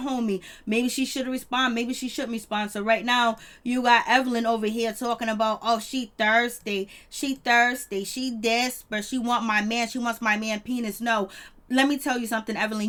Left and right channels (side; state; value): both; identical; correlation 1.00